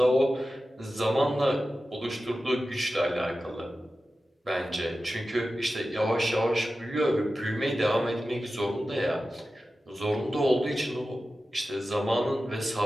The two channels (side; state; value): both; normal; correlation 0.93